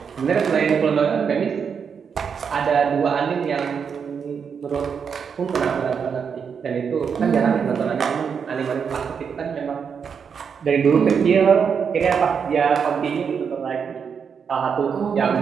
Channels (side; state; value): left; quieter; 6.6 dB